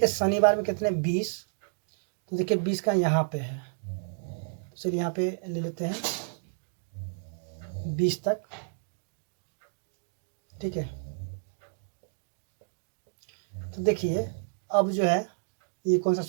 शनिवार में कितने 20, तो देखिए 20 का यहाँ पे है, तो चलिए यहाँ पे ले लेते हैं 20 तक। ठीक है, तो देखिए अब जो है ये कौन सा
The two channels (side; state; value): left; silent; digital silence